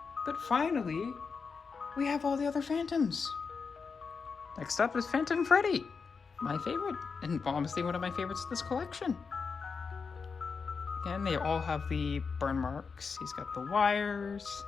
But finally, we have all the other Phantoms. Next up is Phantom Freddy, my favorite, and honestly one of my favorites of this collection. Again, they all have the burn marks. He's got the wires.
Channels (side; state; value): right; quieter; 5.2 dB